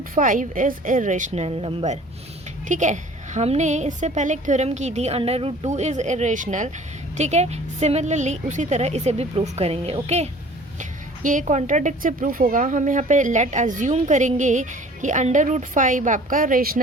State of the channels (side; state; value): both; normal; correlation 0.49